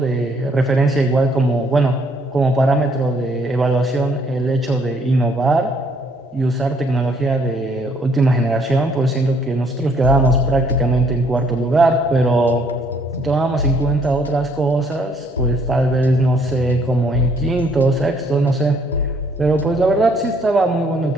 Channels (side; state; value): both; normal; correlation 0.65